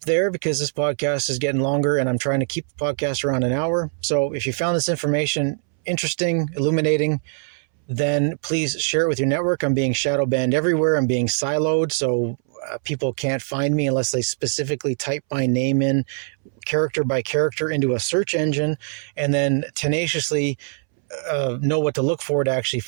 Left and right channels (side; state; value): left; silent; 64 dB below the other